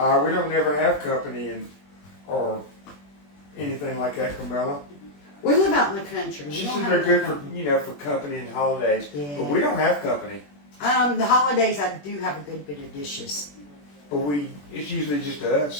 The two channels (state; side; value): late; right; 21 ms